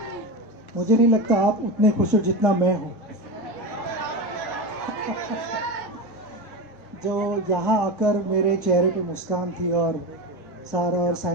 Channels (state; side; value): normal; both; correlation 0.22